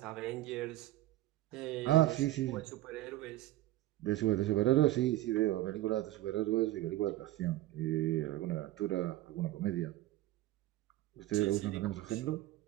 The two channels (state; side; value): quieter; left; 15.7 dB